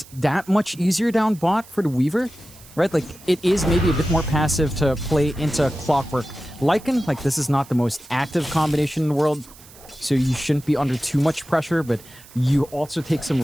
that much easier down bot for the Weaver, right? Like, it is maybe a bit more passive to play into Clockwork Lycan. Like, this is not the most active combination in the world, so you shouldn't be under too much pressure, but you also take some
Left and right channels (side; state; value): right; noise; hiss, 22 dB below the sound